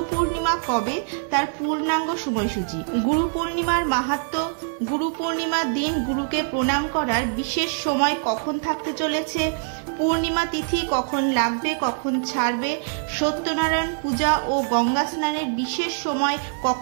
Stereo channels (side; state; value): left; silent; 63 dB below the other